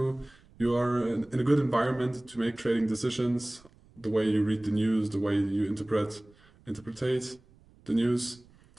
are in a good environment to make trading decisions. The way you read the news, the way you interpretate the news,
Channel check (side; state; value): right; noise; rumble, 28 dB below the sound